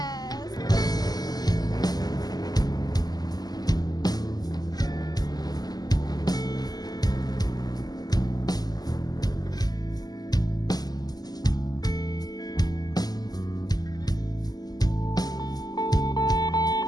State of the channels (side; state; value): right; late; 0.19 ms